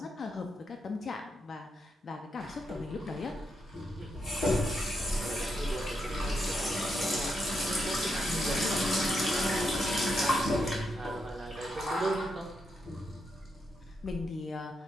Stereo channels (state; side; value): normal; both; correlation 0.82